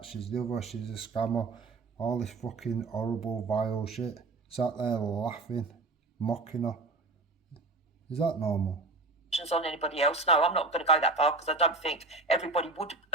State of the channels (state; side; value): quieter; left; 3.5 dB